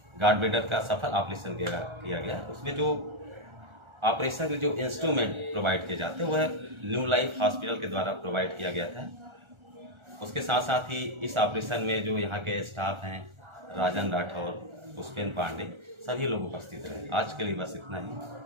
गार्ड ब्लेडर का सफल ऑपरेशन किया गया उसमें जो ऑपरेशन के जो इंस्ट्रूमेंट प्रोवाइड किए जाते हैं वह न्यू लाइफ हॉस्पिटल के द्वारा प्रोवाइड किया गया था। उसके साथ साथ ही इस ऑपरेशन में जो यहाँ के स्टाफ हैं राजन राठौर, पुष्पेन पांडे, सभी लोग उपस्थित रहे। आज के लिए बस इतना ही,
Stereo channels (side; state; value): left; late; 1.4 ms